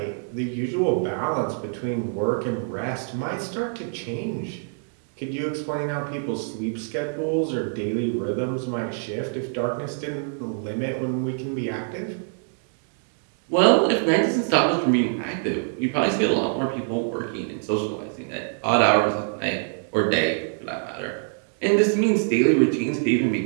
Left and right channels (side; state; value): left; silent; digital silence